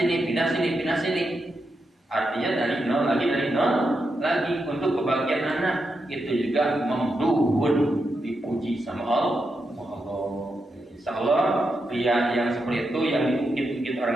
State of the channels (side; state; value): both; normal; correlation 0.85